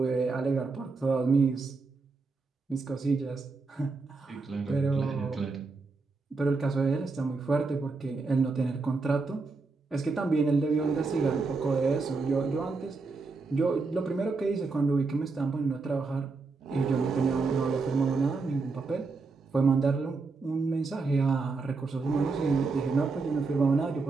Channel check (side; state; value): left; quieter; 4.0 dB